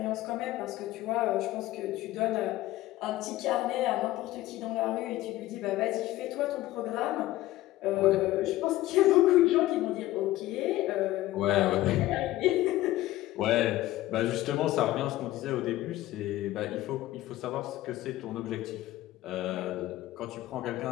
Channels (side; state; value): right; quieter; 16.2 dB